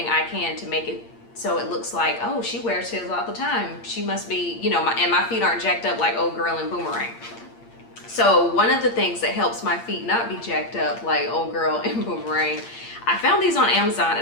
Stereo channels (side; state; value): right; late; 8.7 ms